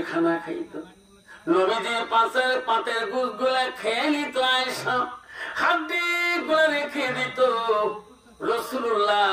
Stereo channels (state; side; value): identical; both; correlation 1.00